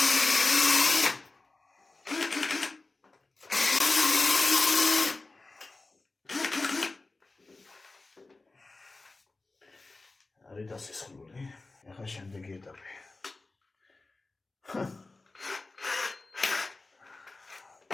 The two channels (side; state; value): right; quieter; 3.4 dB